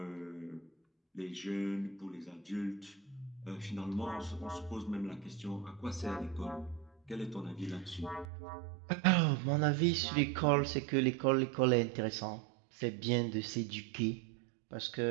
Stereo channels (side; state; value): left; drops out; at 8.2 s